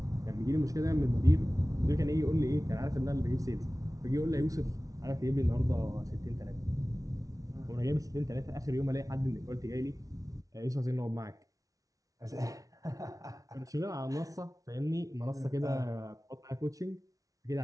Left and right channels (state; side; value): late; left; 0.17 ms